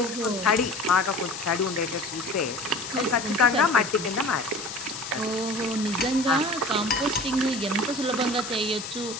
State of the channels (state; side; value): noise; left; hiss, 9 dB below the sound